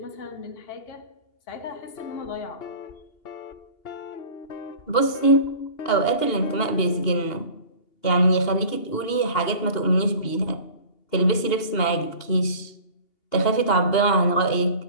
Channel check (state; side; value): late; right; 2.8 ms